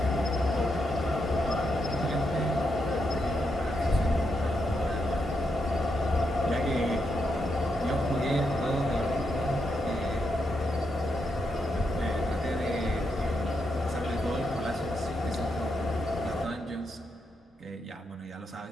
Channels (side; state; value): both; normal; correlation 0.82